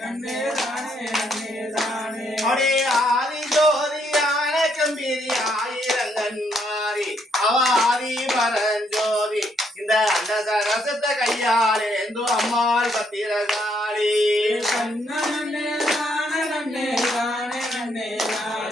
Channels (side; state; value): both; normal; correlation 0.73